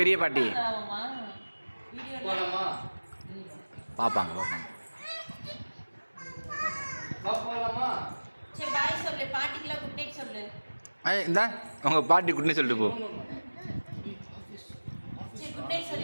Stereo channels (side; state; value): both; inverted; correlation -1.00